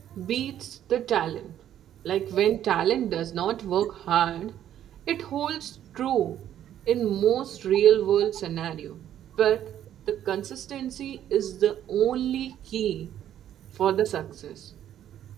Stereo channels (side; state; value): left; quieter; 11.0 dB